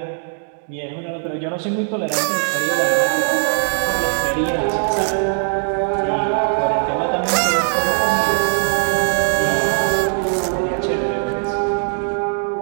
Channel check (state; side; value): silent; left; digital silence